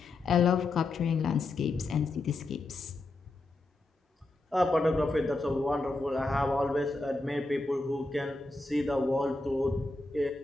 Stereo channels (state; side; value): quieter; right; 3.0 dB